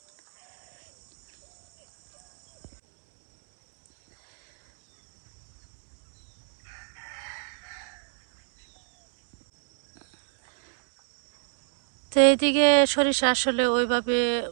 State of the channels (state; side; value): silent; left; digital silence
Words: তো এইদিকে সরিষা আসলে ওইভাবে